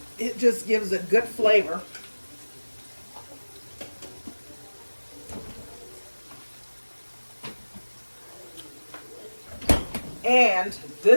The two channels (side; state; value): both; inverted; correlation -1.00